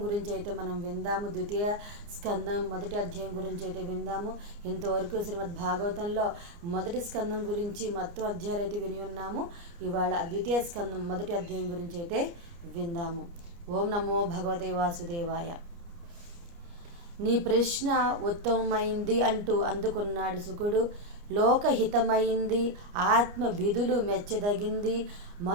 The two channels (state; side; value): late; left; 29 ms